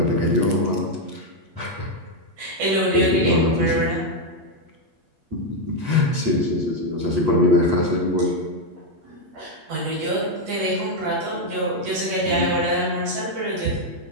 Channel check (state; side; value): late; left; 8.5 ms